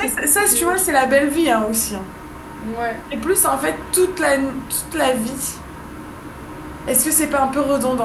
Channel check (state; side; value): identical; both; correlation 1.00